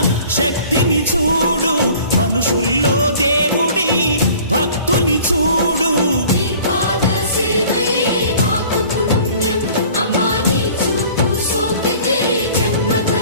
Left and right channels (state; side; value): inverted; both; correlation -0.49